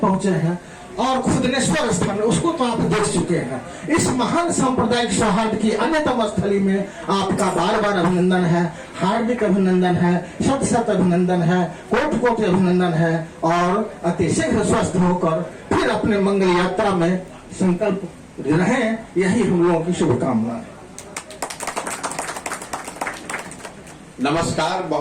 हैं, और खुदनेश्वर स्थान उसको तो आप देख चुके हैं। इस महान सांप्रदायिक सौहार्द की अन्यतम स्थली में आपका बार बार अभिनंदन है, हार्दिक अभिनंदन है, शत शत अभिनंदन है, कोटि कोटि अभिनंदन है, और अतिशीघ्र स्वस्थ होकर फिर अपने मंगल यात्रा में संकल्प रहें, यही हम लोगों की शुभकामना है। नमस्कार,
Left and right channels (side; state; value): both; identical; correlation 1.00